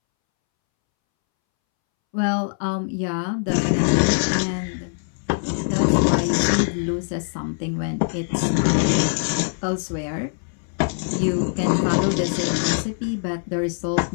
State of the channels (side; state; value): right; silent; 64 dB below the other